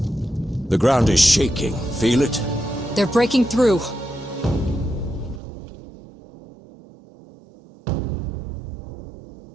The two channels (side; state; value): left; drops out; at 5.4 s